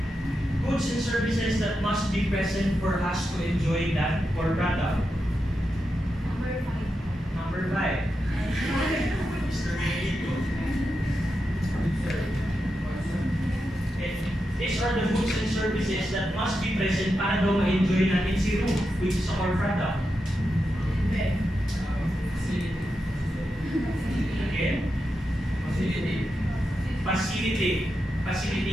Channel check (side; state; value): both; normal; correlation 0.88